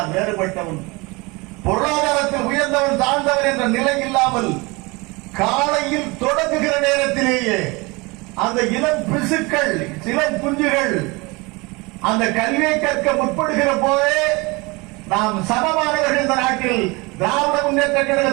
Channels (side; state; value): left; quieter; 25.5 dB